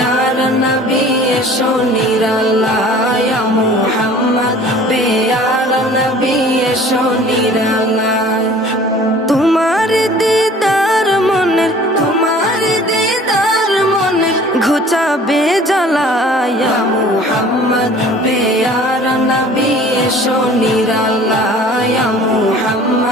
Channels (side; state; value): both; normal; correlation 0.49